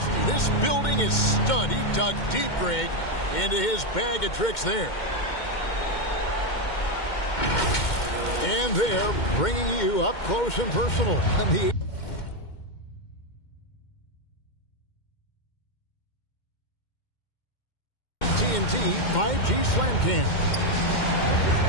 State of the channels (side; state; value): right; late; 2.1 ms